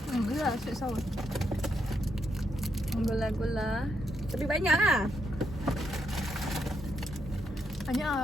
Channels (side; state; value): both; normal; correlation 0.80